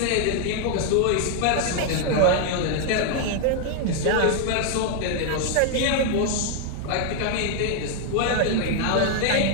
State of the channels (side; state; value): both; different; correlation 0.00